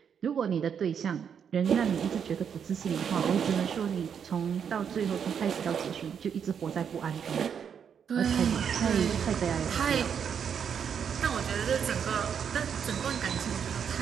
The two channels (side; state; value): left; quieter; 7.6 dB